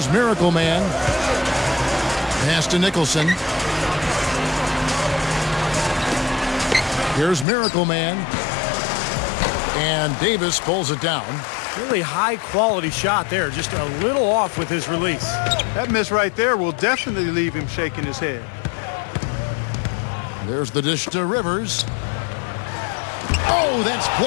Miracle Man. Pass to Nicholson. Here's Miracle Man. And Davis pulls it down. Really high-quality shot there. Just a little off with his release. That miss right there will definitely leave him shaking his head. There's the dish to Rivers. Oh, that's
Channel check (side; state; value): right; drops out; at 7.5 s